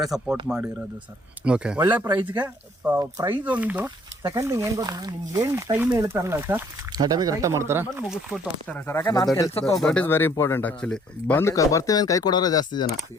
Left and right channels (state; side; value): normal; both; correlation 0.61